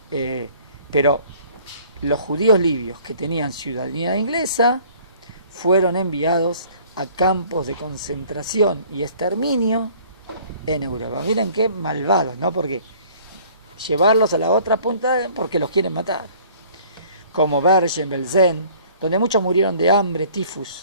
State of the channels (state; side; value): inverted; both; correlation -0.53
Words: pero los judíos libios que tenían ciudadanía inglesa fueron enviados a campos de concentración y exterminio en Europa. Miren qué malvados, ¿no? Porque llevarlos a la otra punta porque los quieren matar. Como Bergen-Belsen, donde muchos murieron de hambre, tifus